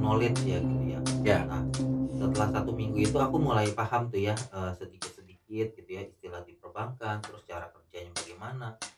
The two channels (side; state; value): both; identical; correlation 1.00